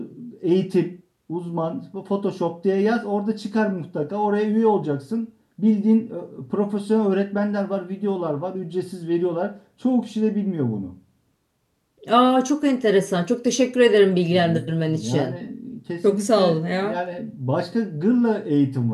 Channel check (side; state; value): both; identical; correlation 1.00